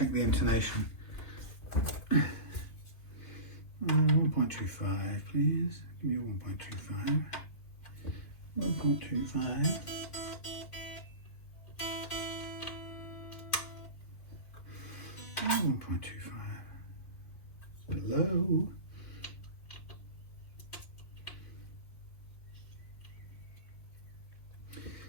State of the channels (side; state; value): right; late; 2.6 ms